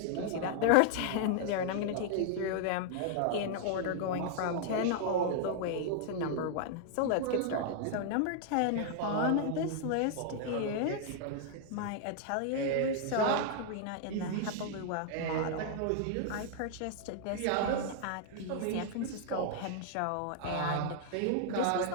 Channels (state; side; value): different; both; correlation -0.01